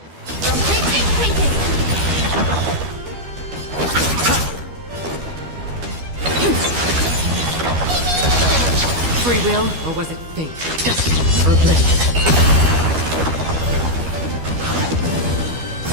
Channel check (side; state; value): left; late; 12 ms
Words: Rotate ink painting. Free will, or was it fate? Destined for oblivion.